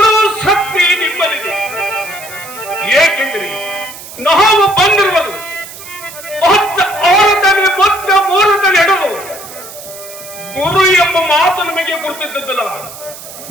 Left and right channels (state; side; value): noise; right; hiss, 14 dB below the sound